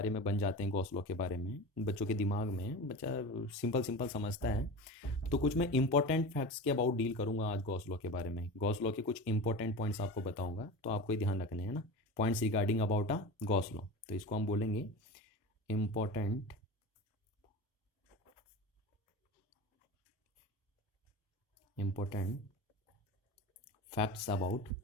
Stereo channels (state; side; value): normal; both; correlation 0.30